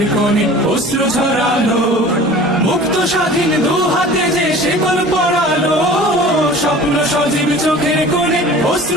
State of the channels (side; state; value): both; normal; correlation 0.42